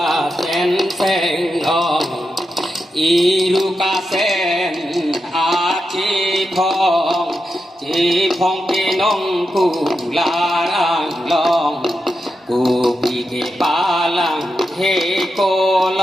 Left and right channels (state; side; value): normal; both; correlation 0.87